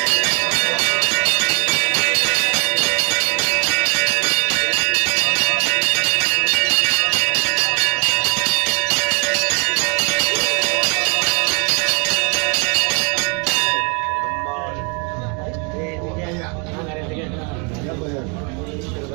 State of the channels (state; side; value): quieter; left; 34.6 dB